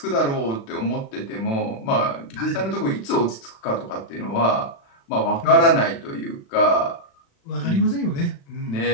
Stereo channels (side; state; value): right; late; 36 ms